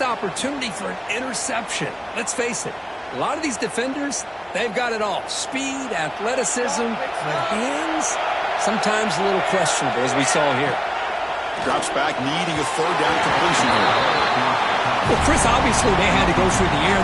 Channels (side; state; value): both; identical; correlation 1.00